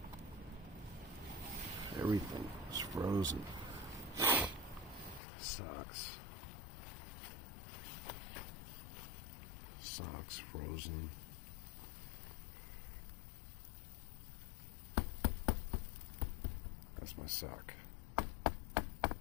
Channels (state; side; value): drops out; right; at 5.2 s